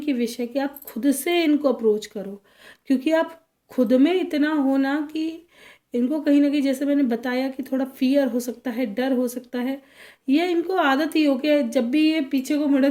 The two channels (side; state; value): both; identical; correlation 1.00